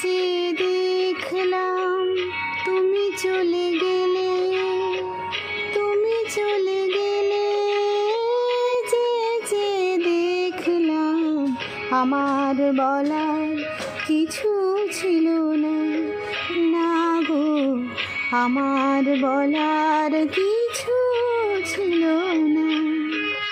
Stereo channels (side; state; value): both; identical; correlation 1.00